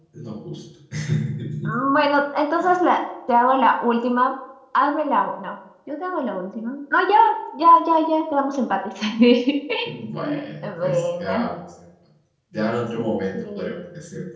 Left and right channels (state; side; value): identical; both; correlation 1.00